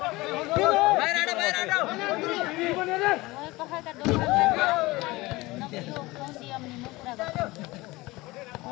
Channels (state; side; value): quieter; right; 20.9 dB